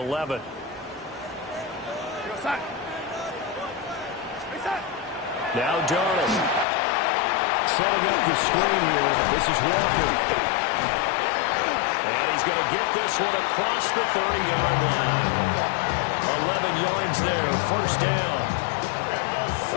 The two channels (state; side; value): drops out; right; at 6.7 s